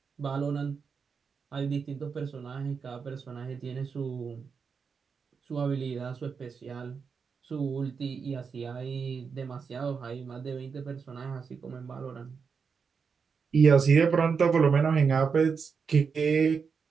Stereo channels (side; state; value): left; quieter; 5.8 dB